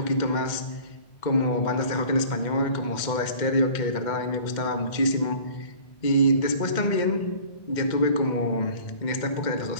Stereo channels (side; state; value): right; late; 2.1 ms